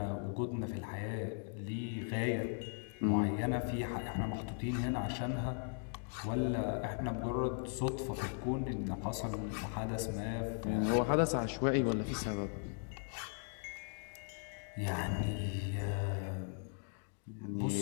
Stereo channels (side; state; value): right; silent; 52 dB below the other